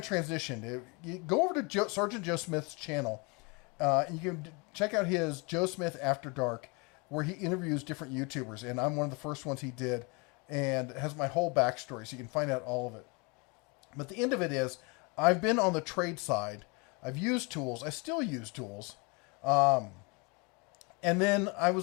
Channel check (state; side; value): quieter; right; 30.0 dB